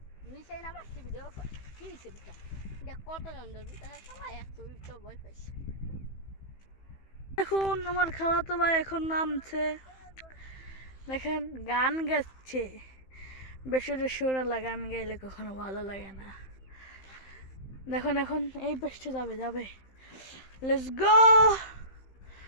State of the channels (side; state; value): right; late; 15 ms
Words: দেখুন আমার খালাতো ভাই এখন নামছে, দেখেন গান গাচ্ছে। বেসরে সুরালা গান গাইলে কখনো ভালো লাগে না। দেখুন এখন এই পেছতে যাবে। Let's go.